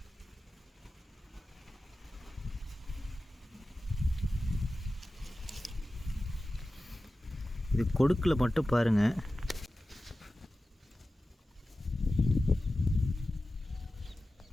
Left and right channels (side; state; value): both; normal; correlation 0.94